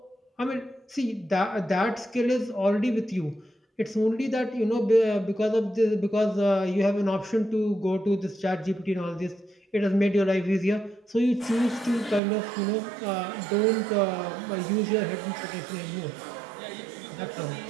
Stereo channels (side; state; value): left; drops out; at 12.2 s